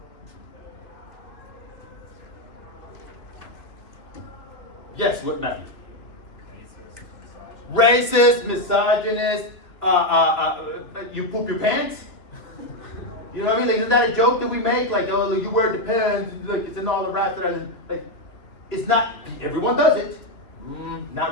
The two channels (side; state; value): right; late; 2.9 ms